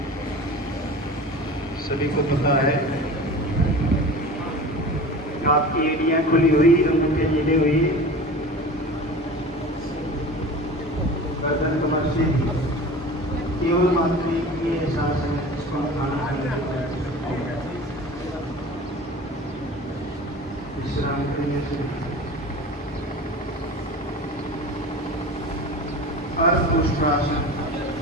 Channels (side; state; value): both; normal; correlation 0.36